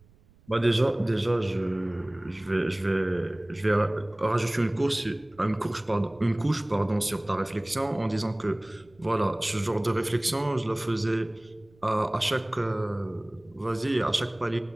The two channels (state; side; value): noise; right; rumble, 29 dB below the sound